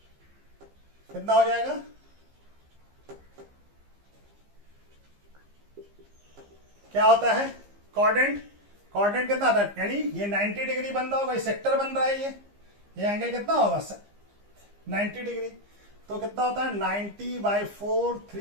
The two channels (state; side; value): late; left; 15 ms